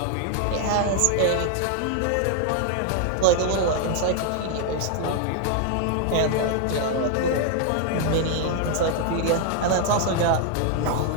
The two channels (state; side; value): different; both; correlation 0.00